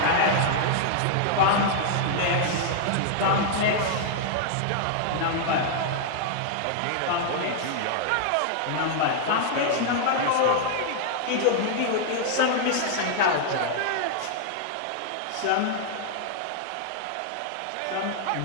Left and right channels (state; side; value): different; both; correlation -0.01